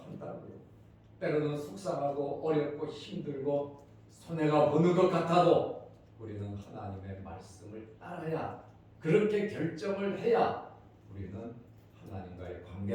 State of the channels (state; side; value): identical; both; correlation 1.00